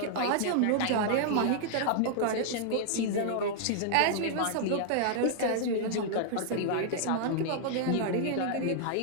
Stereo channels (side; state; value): both; different; correlation -0.01